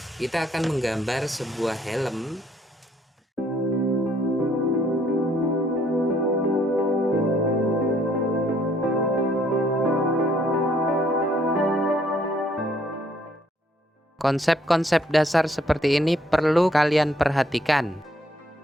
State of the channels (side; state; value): both; normal; correlation 0.66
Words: kita akan menggambar sebuah helm. Konsep-konsep dasar seperti ini perlu kalian perhatikan.